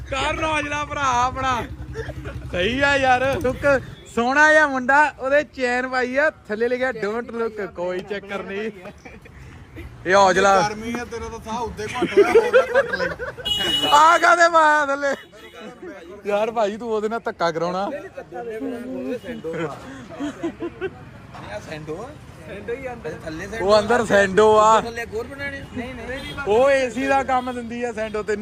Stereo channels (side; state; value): both; identical; correlation 1.00